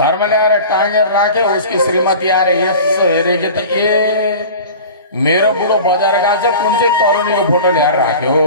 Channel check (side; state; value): both; inverted; correlation -0.38